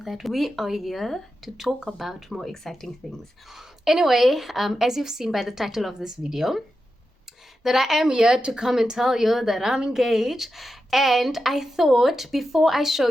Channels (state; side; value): normal; both; correlation 0.89